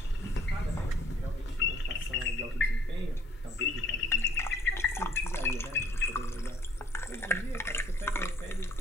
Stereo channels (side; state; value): both; normal; correlation 0.61